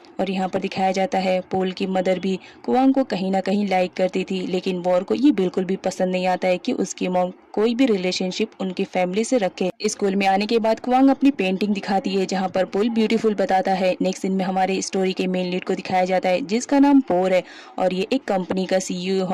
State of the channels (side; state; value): both; identical; correlation 1.00